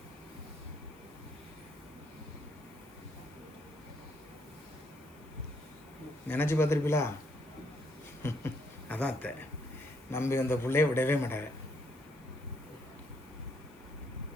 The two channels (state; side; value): noise; left; hiss, 27 dB below the sound